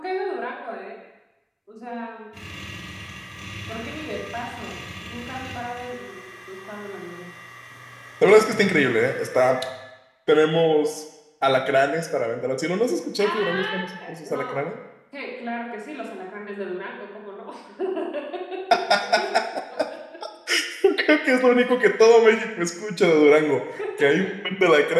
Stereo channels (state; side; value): identical; both; correlation 1.00